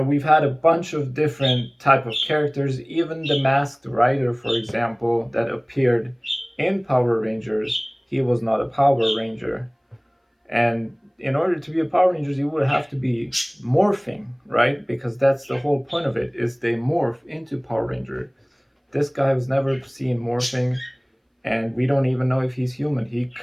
had a bunch of different type of characters, even the Masked Rider, for example, that appeared in Power Rangers. He was not a Power Ranger. And in order to be a Power Ranger, you would have to be morphing, right? Because that's the whole point of it, is they morph into Power Ranger. This guy was never seen morphing, and we don't even know if he's human. He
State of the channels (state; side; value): identical; both; correlation 1.00